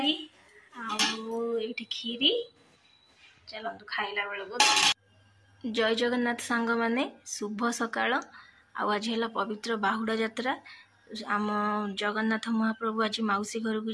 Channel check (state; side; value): identical; both; correlation 1.00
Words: आउ खीरी। चलतु खाइला बेलू। जय जगन्नाथ सांग माने शुभ सकाळ आज है पवित्र बाहुड़ा यात्रा। आम जगन्नाथ महाप्रभु आज मौसी घर को